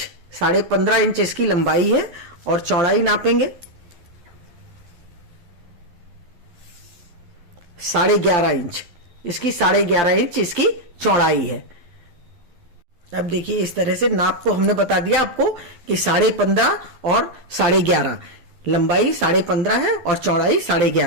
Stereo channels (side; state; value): left; late; 11 ms